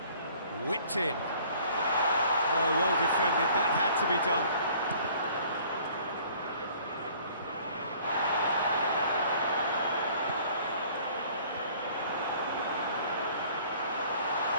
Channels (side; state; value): both; inverted; correlation -0.54